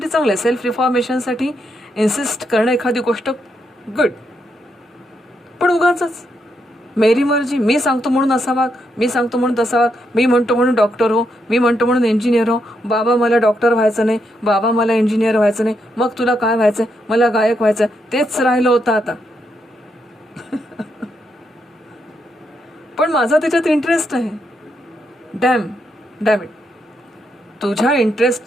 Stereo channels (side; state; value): both; normal; correlation 0.80